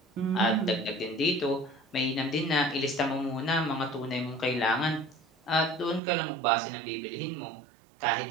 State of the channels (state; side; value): drops out; left; at 6.0 s